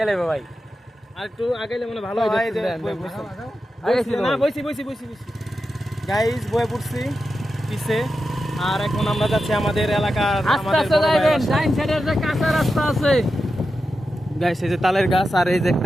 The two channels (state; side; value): normal; both; correlation 0.90